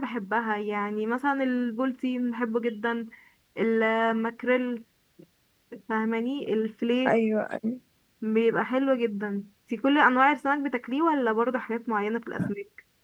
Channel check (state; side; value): identical; both; correlation 1.00